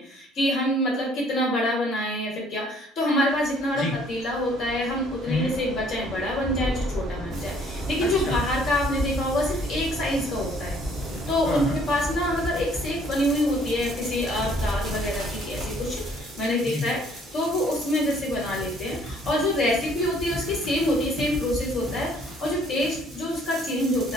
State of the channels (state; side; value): normal; both; correlation 0.61